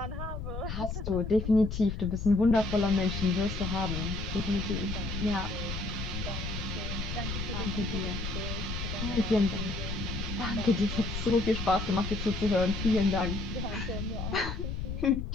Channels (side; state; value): left; noise; rumble, 5 dB below the sound